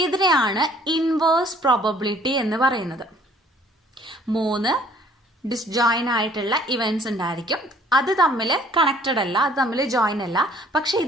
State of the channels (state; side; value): normal; both; correlation 0.57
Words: ഇതിനെയാണ് ഇൻവേഴ്സ് പ്രോബബിലിറ്റി എന്ന് പറയുന്നത്. 3 ഡിസ്ജോയിൻ ആയിട്ടുള്ള ഇവന്റ്സ് ഉണ്ടായിരിക്കും. അത് തമ്മിൽ കണക്റ്റഡ് അല്ല, അത് തമ്മിൽ ജോയിൻ അല്ല. പക്ഷെ